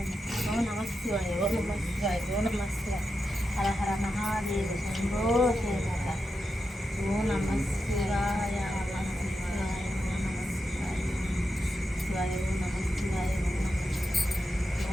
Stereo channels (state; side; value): normal; both; correlation 0.88